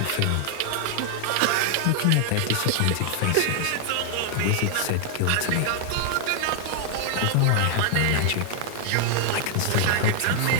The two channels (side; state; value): both; different; correlation 0.00